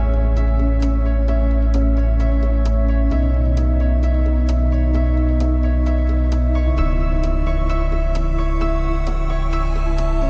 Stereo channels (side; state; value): both; identical; correlation 1.00